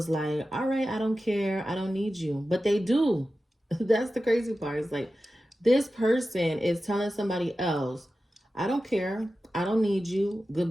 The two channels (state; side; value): normal; both; correlation 0.94